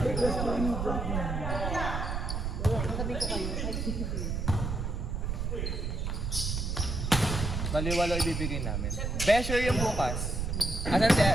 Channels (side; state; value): right; noise; rumble, 2 dB below the sound